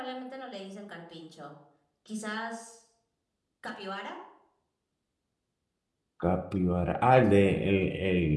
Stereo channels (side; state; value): both; identical; correlation 1.00